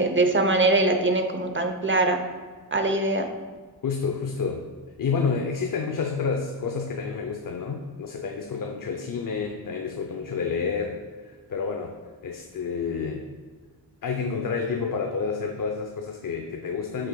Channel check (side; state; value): both; normal; correlation 0.01